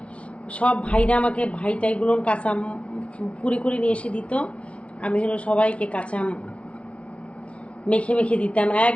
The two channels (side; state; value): right; late; 0.062 ms